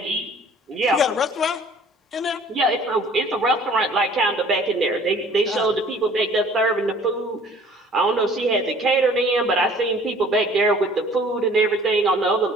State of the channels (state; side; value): normal; both; correlation 0.52